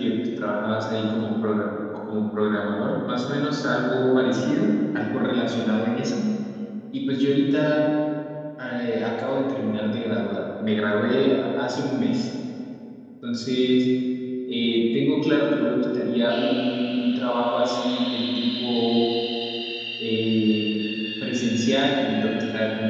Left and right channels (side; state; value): both; identical; correlation 1.00